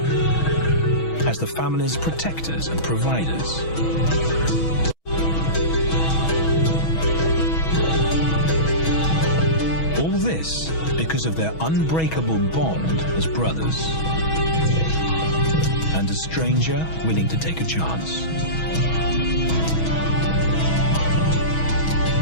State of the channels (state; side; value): late; right; 6.2 ms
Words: as the family's protectors and providers. All this because of their unbreakable bond as brothers, and a stranger willing to take a chance.